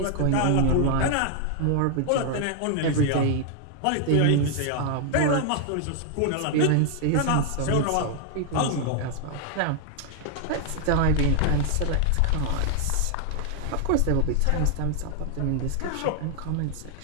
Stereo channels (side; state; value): both; different; correlation 0.00